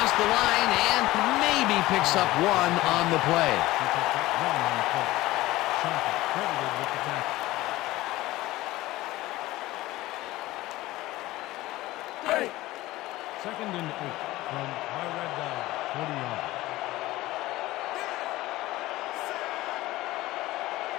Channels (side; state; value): right; quieter; 17.7 dB